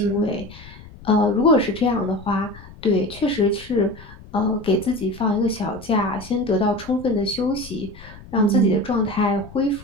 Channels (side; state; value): left; noise; rumble, 18 dB below the sound